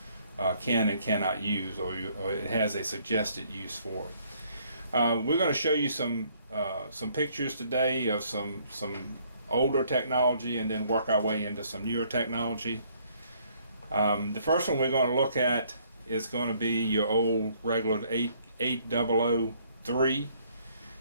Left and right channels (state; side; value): inverted; both; correlation -0.65